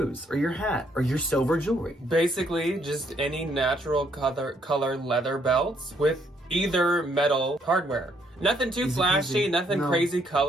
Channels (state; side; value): normal; both; correlation 0.70